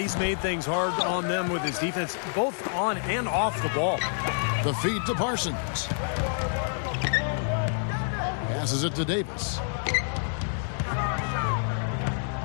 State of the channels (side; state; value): right; silent; digital silence